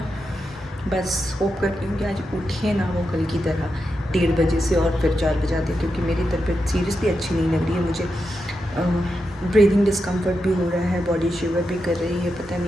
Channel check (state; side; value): normal; both; correlation 0.87